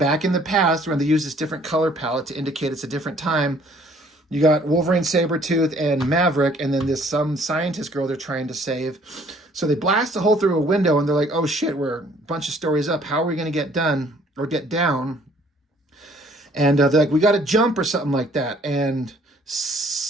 in the past when they use this different color palette to indicate it's a different time. You got Wolverine, Sabretooth, and Maverick, and then some scientist girl they're trying to save. So they blast a hole through a window, and they're like, oh shit, we're a bunch of stories up. How are we going to get done or get down? And they're like, we got to jump or something like that. And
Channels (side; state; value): both; normal; correlation 0.59